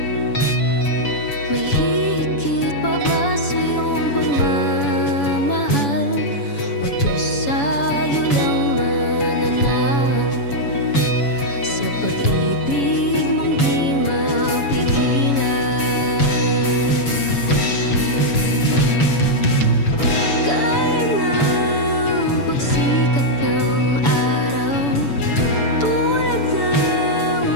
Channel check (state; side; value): late; right; 7.1 ms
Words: May higit pa ba sa iyong pagmamahal, o Diyos sa'yo lang mananahan? Sa pag-ibig mong di mapigilan, gaya ng pagsikat ng araw, tulad ng